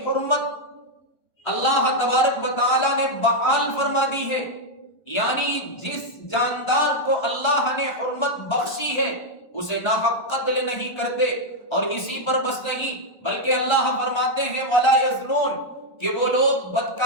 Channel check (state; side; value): late; right; 1.3 ms